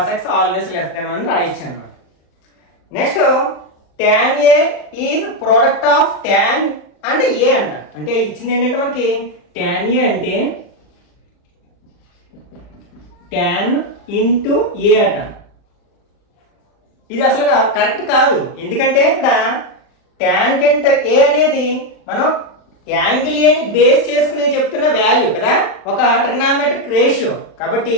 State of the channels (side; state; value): right; late; 40 ms